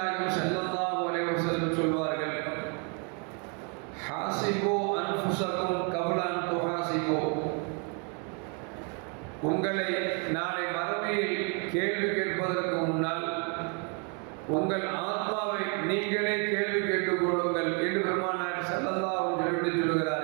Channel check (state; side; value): quieter; left; 36.8 dB